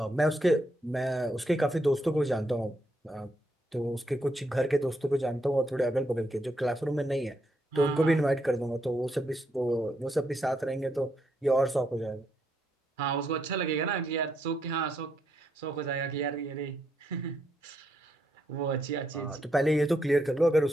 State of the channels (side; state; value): both; normal; correlation 0.78